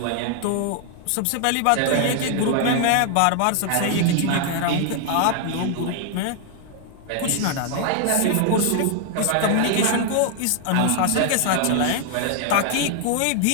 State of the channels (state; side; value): different; both; correlation 0.00